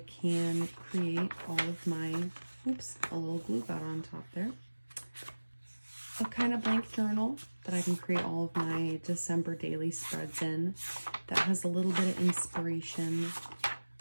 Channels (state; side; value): inverted; both; correlation -1.00